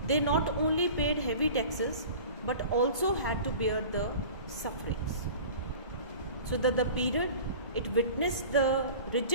They not only paid heavy taxes but also had to bear the sufferings. So that the period, it witnessed the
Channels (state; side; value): inverted; both; correlation -0.40